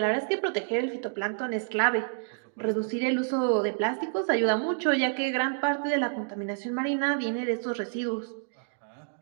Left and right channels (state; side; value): silent; left; digital silence